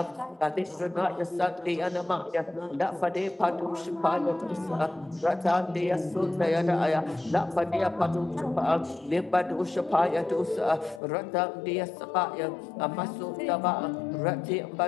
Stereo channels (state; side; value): drops out; right; at 11.0 s